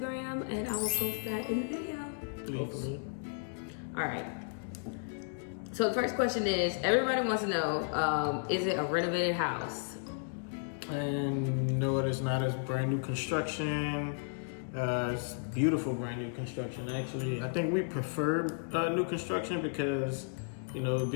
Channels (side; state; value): right; silent; digital silence